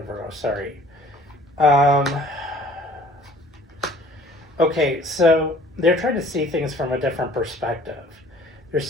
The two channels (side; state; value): both; normal; correlation 0.53